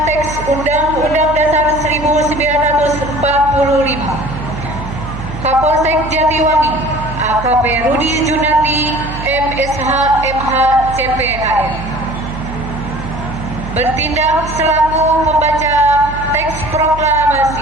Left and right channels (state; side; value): noise; right; hum, 10 dB below the sound